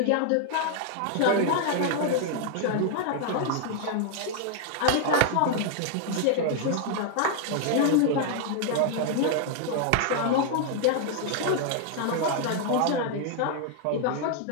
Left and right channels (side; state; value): both; different; correlation 0.00